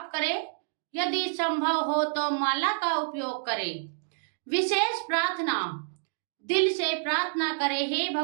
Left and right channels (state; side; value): silent; left; digital silence